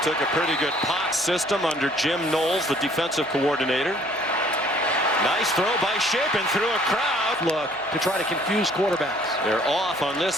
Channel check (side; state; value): right; noise; hum, 27 dB below the sound